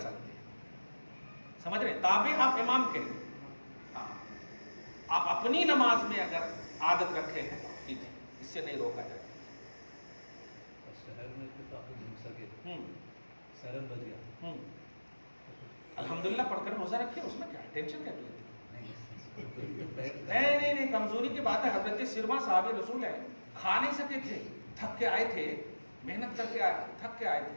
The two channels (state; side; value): inverted; both; correlation -1.00